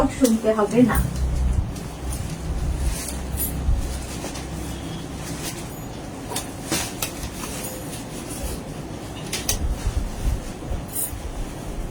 শুনতে হবে না।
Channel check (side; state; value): both; identical; correlation 1.00